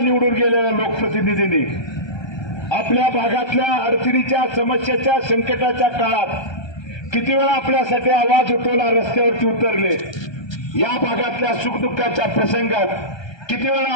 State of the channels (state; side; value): late; right; 1.3 ms